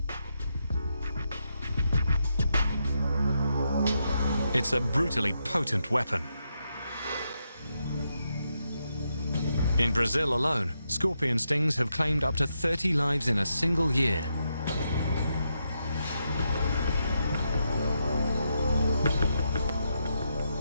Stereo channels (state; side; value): inverted; both; correlation -0.82